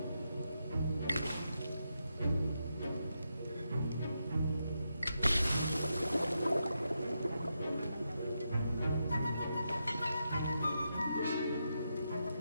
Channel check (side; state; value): both; inverted; correlation -0.85